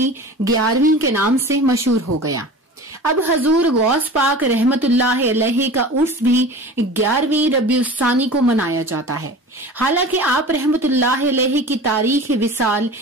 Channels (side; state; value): both; normal; correlation 0.37